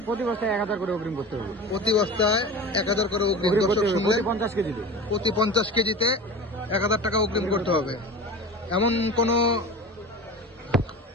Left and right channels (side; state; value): both; normal; correlation 0.33